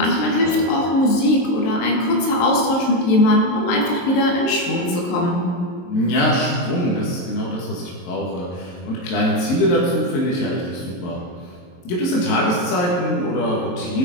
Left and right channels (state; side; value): late; right; 22 ms